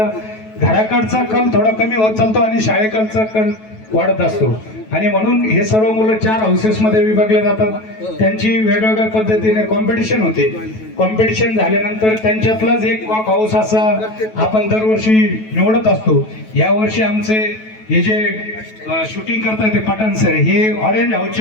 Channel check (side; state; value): right; late; 9.2 ms